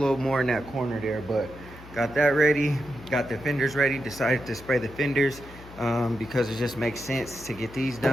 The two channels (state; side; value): noise; left; hum, 18 dB below the sound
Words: more in that corner there, but got that ready, got the fenders ready. Decided to spray the fenders because it just makes sense to get these